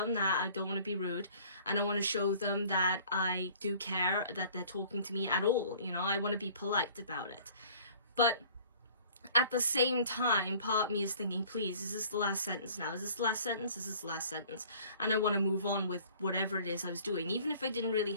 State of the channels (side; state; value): both; inverted; correlation -0.51